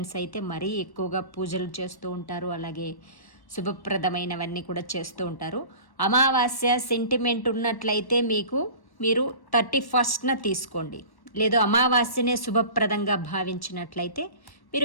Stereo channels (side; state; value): right; late; 1.1 ms